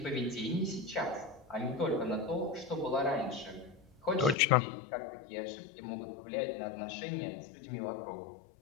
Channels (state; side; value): drops out; right; at 4.4 s